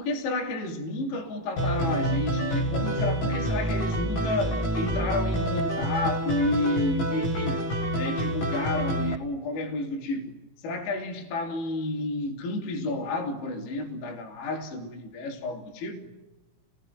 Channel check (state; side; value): late; right; 17 ms